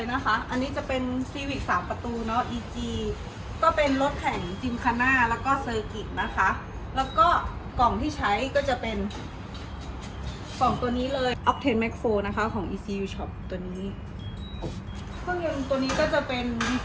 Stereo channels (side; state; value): both; identical; correlation 1.00